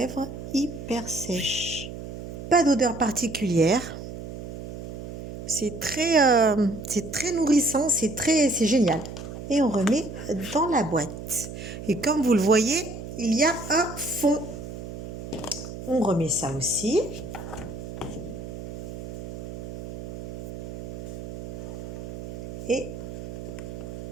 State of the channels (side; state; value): right; noise; hum, 9 dB below the sound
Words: hyper sèches. Pas d'odeur particulière. C'est très nourrissant, c'est génial. Et on remet dans la boîte. Et comme vous le voyez, il y a un fond. On remet ça aussi. Et